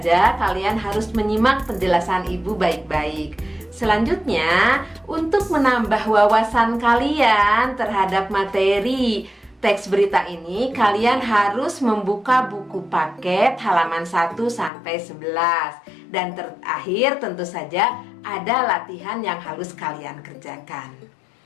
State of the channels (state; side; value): drops out; right; at 14.7 s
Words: kalian harus menyimak penjelasan Ibu baik-baik. Selanjutnya, untuk menambah wawasan kalian terhadap materi teks berita ini, kalian harus membuka buku paket halaman 1 sampai 11. Dan terakhir tentu saja ada latihan yang harus kalian kerjakan.